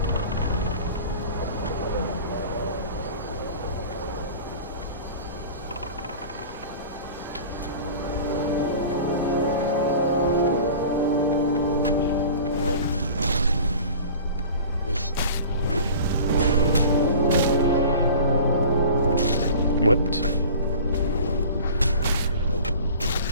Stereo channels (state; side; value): inverted; both; correlation -0.41